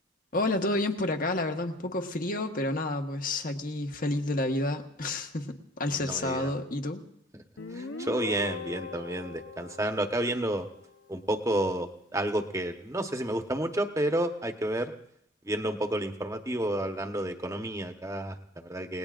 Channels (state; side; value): normal; both; correlation 0.52